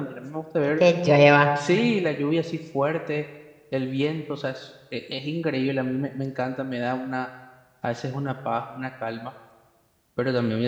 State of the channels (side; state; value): both; identical; correlation 1.00